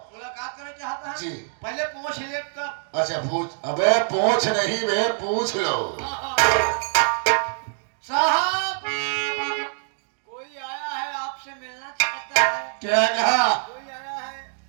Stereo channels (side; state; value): left; silent; digital silence